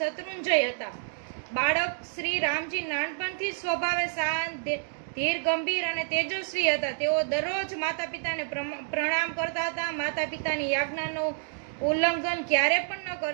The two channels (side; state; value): left; silent; digital silence